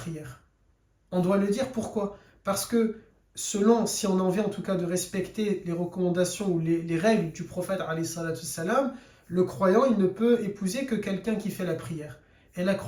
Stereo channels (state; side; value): identical; both; correlation 1.00